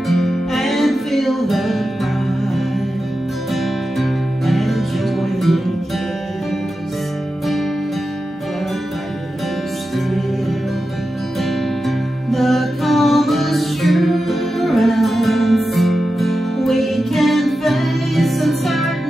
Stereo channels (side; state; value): both; normal; correlation 0.91